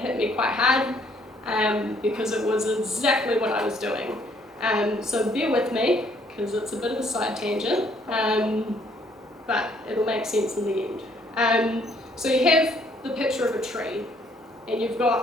me quite hard, because it was exactly what I was doing. So bear with me, because it's a bit of a side tangent, but it'll make sense in the end. So you have the picture of a tree, and you've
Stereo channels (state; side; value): normal; both; correlation 0.65